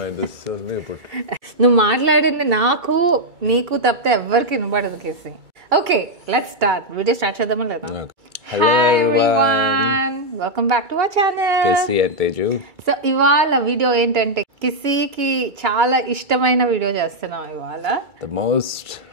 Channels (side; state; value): left; late; 2.3 ms